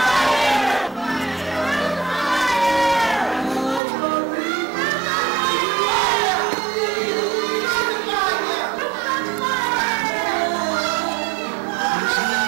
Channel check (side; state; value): left; drops out; at 3.8 s